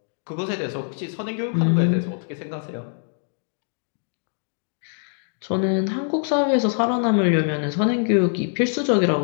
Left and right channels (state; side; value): silent; right; digital silence